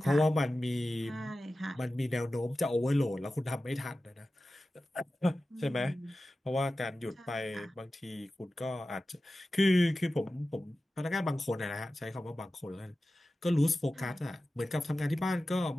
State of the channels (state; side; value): normal; both; correlation 0.94